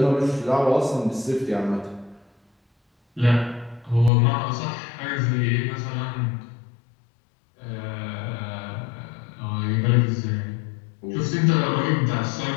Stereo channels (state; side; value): drops out; right; at 4.1 s